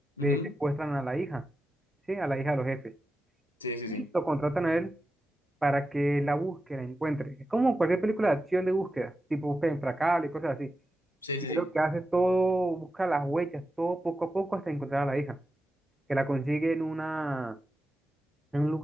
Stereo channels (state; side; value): normal; both; correlation 0.90